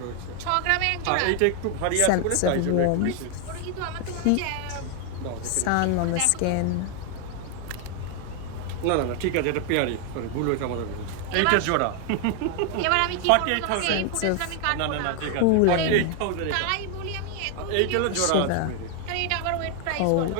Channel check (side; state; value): both; different; correlation 0.00